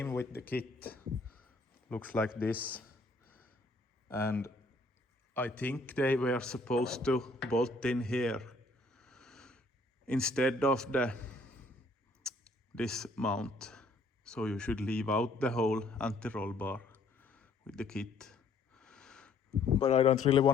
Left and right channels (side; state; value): right; quieter; 3.1 dB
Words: with the kit looks like this, and I think they were supposed to bolt in here instead of this mount. So you should leave out the whole anti-roll bar with the kit. But I don't really